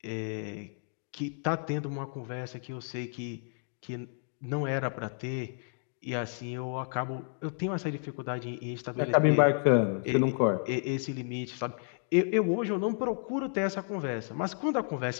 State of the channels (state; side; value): silent; right; 57 dB below the other